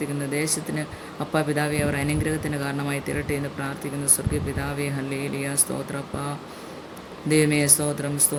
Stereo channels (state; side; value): identical; both; correlation 1.00